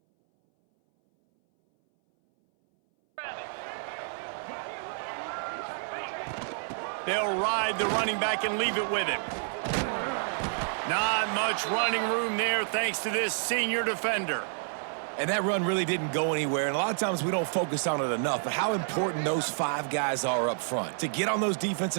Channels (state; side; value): silent; left; 58 dB below the other